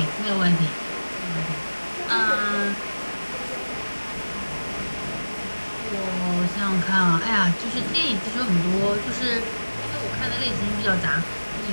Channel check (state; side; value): inverted; both; correlation -1.00